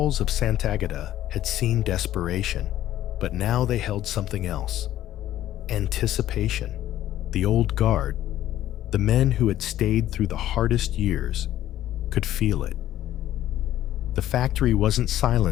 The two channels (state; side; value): quieter; right; 13.1 dB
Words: of Sant'Agata had seen desperation, but now they held something else. Anticipation. The old guard, the men who had stayed through the hardest years, could feel it. The factory wasn't